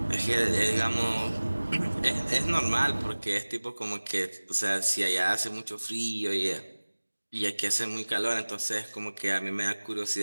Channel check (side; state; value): both; inverted; correlation -1.00